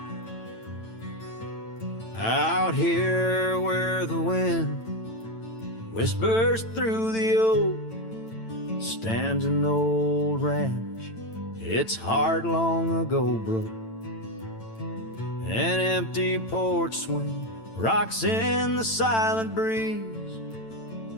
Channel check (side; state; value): right; late; 9.0 ms